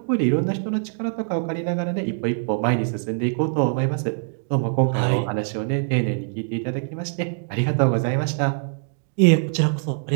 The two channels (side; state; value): left; silent; digital silence